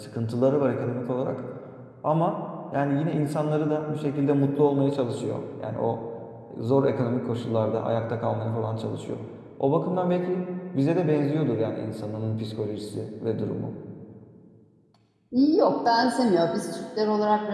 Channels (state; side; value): identical; both; correlation 1.00